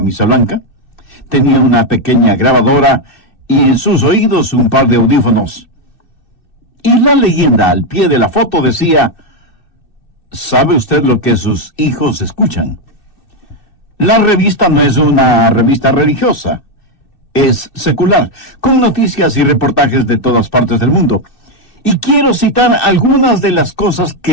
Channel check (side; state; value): right; late; 2.6 ms